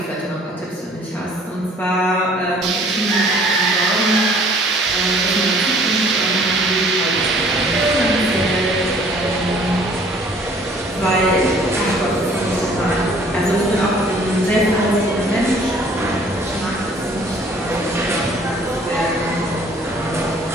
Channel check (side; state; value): both; normal; correlation 0.55